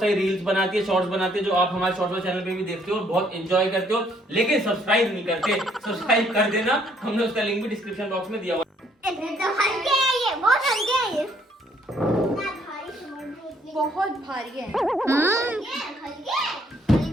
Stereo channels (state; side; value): normal; both; correlation 0.66